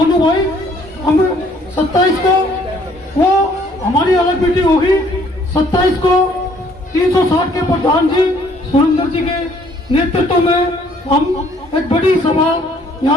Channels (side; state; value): both; normal; correlation 0.62